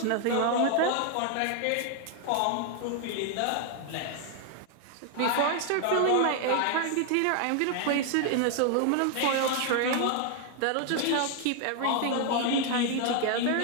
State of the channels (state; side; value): different; both; correlation 0.00